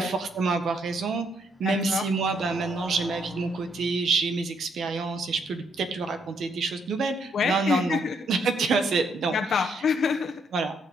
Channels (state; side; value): normal; both; correlation 0.72